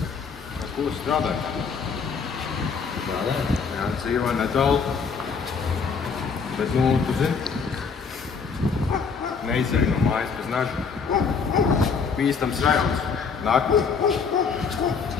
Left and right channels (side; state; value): right; quieter; 5.6 dB